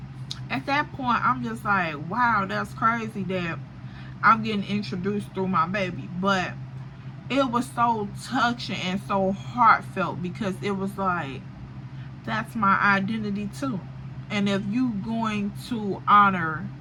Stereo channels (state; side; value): identical; both; correlation 1.00